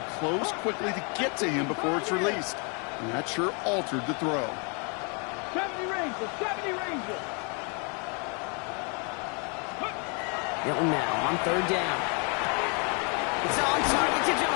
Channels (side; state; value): right; quieter; 36.0 dB